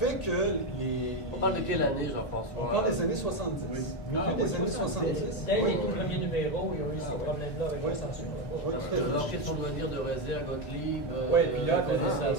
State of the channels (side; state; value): right; late; 1.8 ms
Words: que On parle de quelle année, Jean-François? On parle des années 70. Milieu des années 70. Dès Oui. les tout premiers numéros, ils ont eu ces problèmes-là avec la censure. Oui. Alors qu'ils sont de venir de Rézé à Gottlieb, puis là, Colin c'est